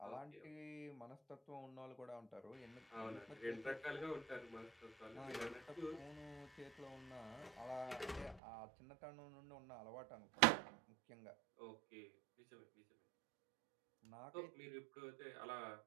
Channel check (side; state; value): left; drops out; at 8.4 s